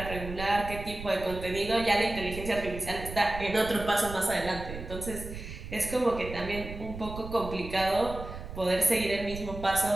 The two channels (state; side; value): noise; right; rumble, 10 dB below the sound